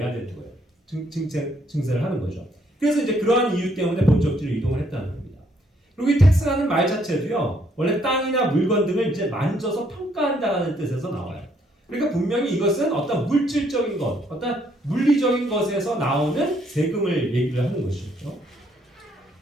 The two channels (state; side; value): normal; both; correlation 0.69